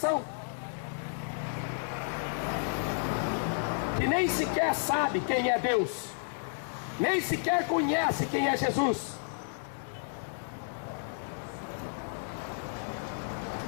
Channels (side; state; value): right; silent; digital silence